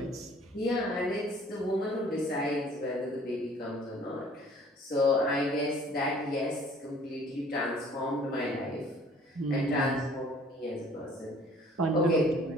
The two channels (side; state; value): both; normal; correlation 0.54